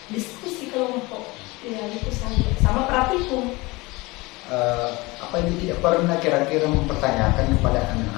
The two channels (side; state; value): right; quieter; 23.1 dB